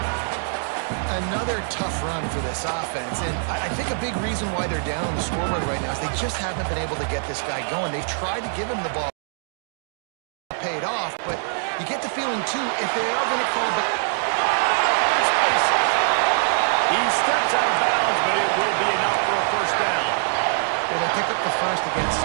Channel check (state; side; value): silent; left; digital silence